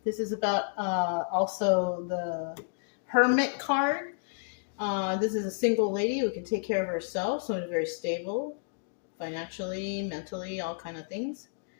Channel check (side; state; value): right; silent; digital silence